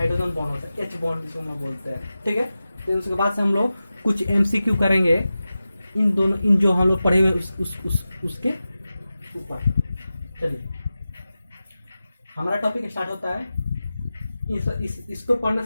बॉन्ड होता है, एच बॉन्ड जिसको हम बोलते हैं, ठीक है। तो उसके बाद से हम लोग कुछ एमसीक्यू करेंगे इन जो हम लोग पढ़े हुए उसके ऊपर। चलिए हमारा टॉपिक स्टार्ट होता है। इसको पढ़ने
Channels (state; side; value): inverted; both; correlation -0.94